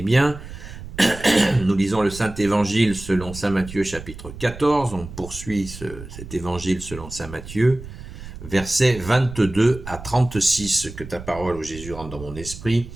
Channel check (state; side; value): noise; right; rumble, 13 dB below the sound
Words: bien. Nous lisons le Saint-Évangile selon saint Matthieu chapitre 14. On poursuit cet évangile selon saint Matthieu, versets 22 à 36. Que ta parole, ô Jésus, rentre dans mon esprit,